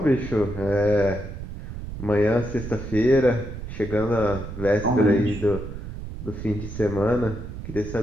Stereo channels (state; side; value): noise; right; rumble, 9 dB below the sound